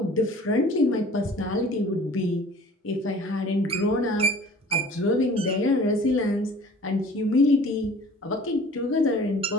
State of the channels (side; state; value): both; normal; correlation 0.48